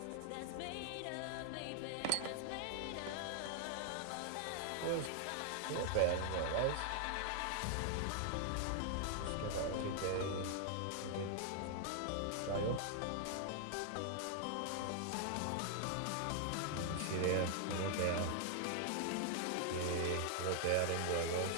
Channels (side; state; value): both; different; correlation 0.00